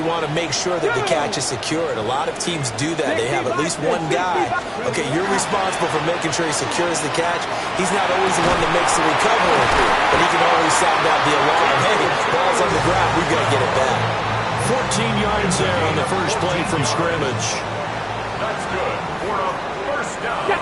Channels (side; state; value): both; identical; correlation 1.00